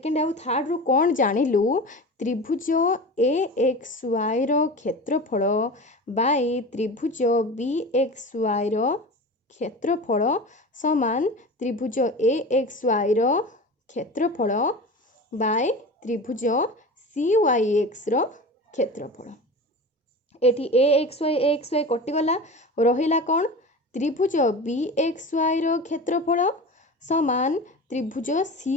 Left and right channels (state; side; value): normal; both; correlation 0.32